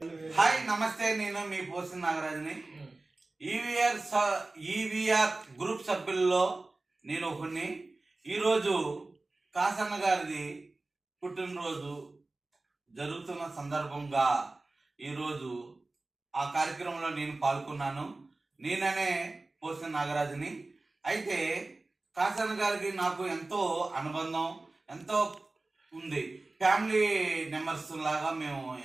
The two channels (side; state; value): left; quieter; 3.1 dB